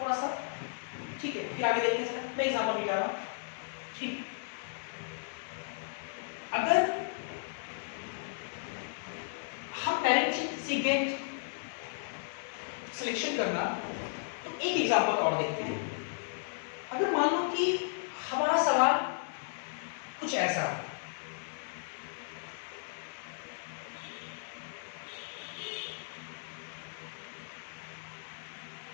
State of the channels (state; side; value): silent; right; 55 dB below the other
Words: थोड़ा सा। ठीक है, फिर आगे देखते हैं, मैं एग्जाम्पल भी जा रहा हूँ। ठीक, अगर हम पैरेंट चेन सीक्वेंस सिलेक्शन करना, तो एक एग्जांपल और देखते हैं। अगर मान लो कि हमारा सवाल कुछ ऐसा,